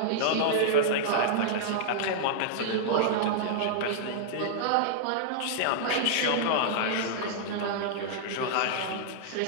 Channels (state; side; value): different; both; correlation -0.01